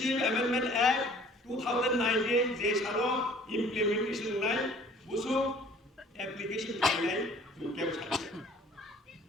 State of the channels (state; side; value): normal; both; correlation 0.52